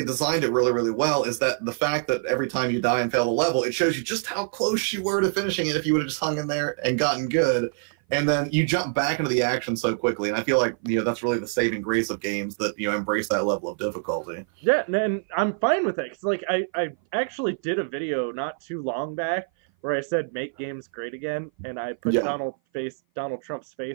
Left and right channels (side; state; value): left; silent; 57 dB below the other